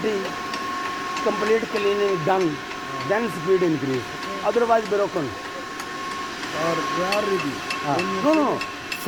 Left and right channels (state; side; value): noise; left; rumble, 28 dB below the sound